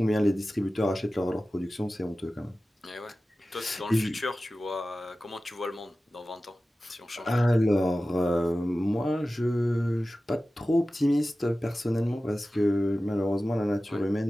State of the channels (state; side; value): normal; both; correlation 0.95